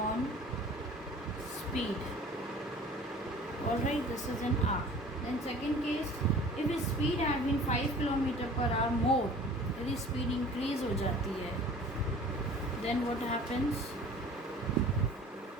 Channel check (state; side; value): normal; both; correlation 0.46